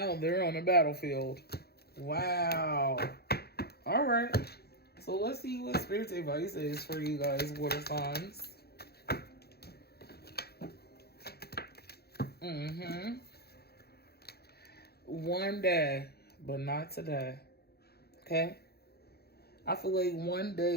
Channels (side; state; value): right; late; 0.46 ms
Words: they're on the battlefield. Wow. All right. So let's see what Spirit's advice is for you guys, water signs. One day, but not today. Okay? I feel like one